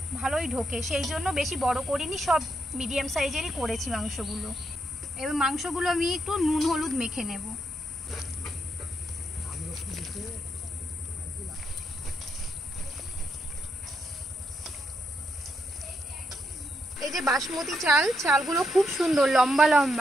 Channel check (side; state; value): both; normal; correlation 0.79